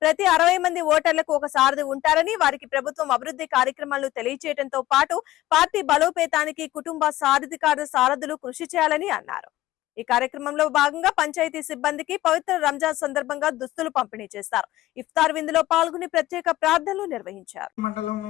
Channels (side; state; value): right; quieter; 16.1 dB